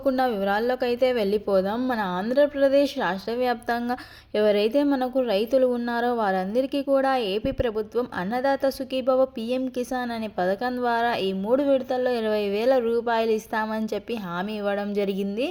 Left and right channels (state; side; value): identical; both; correlation 1.00